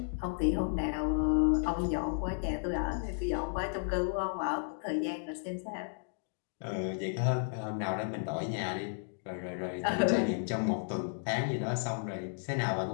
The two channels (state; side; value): silent; right; digital silence